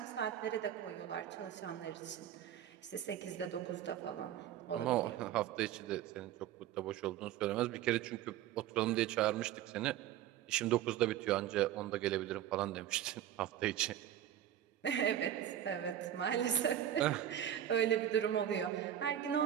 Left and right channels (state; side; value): quieter; left; 11.1 dB